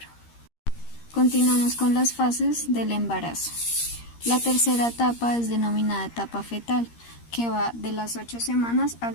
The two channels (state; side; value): late; right; 13 ms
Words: Continuamos con las fases del embarazo. La tercera etapa es denominada etapa fetal, que va de las 8 semanas